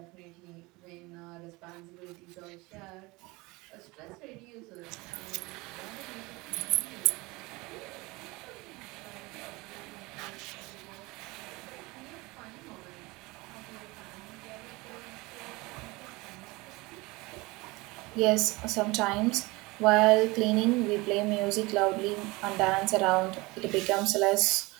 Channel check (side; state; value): left; quieter; 23.5 dB